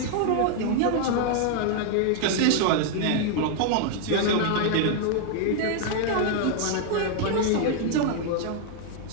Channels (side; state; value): both; different; correlation 0.00